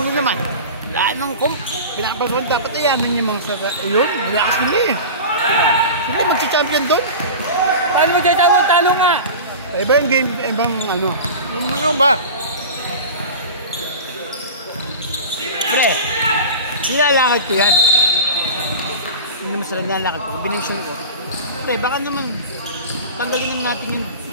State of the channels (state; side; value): inverted; both; correlation -0.31